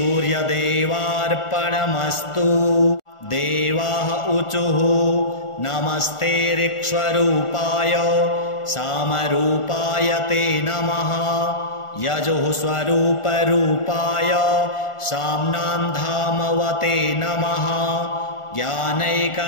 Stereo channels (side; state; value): right; late; 1.4 ms